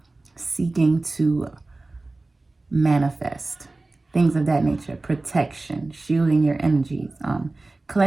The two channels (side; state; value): left; quieter; 3.1 dB